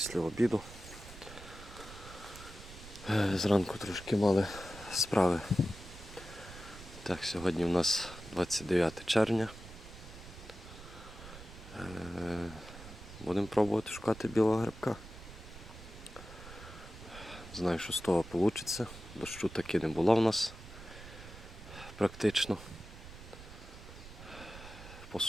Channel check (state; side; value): noise; right; rumble, 15 dB below the sound